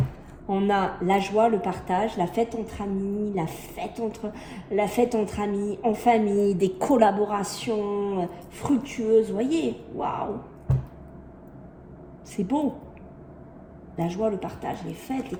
On a la joie, le partage, la fête entre amis, la fête entre amis, en famille, des collaborations fructueuses, vous voyez, waouh, c'est beau. La joie, le partage, les fêtes, les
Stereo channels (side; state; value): both; identical; correlation 1.00